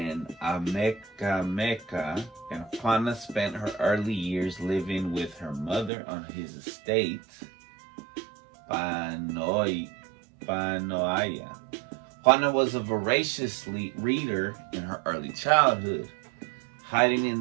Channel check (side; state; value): left; drops out; at 5.9 s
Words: Amecameca, and Juana spent her early years living with her mother on his estate, Panoaya. Juana was a voracious reader in her early childhood, hiding